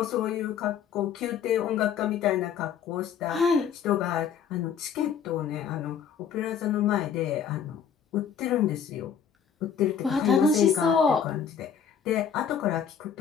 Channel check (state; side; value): quieter; right; 7.6 dB